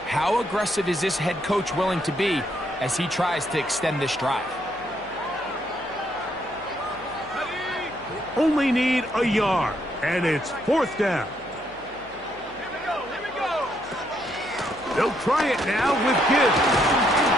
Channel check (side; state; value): left; noise; hum, 24 dB below the sound